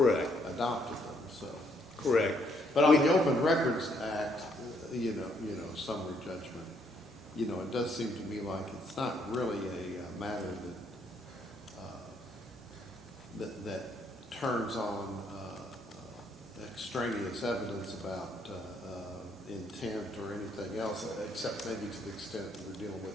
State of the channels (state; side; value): normal; both; correlation 0.70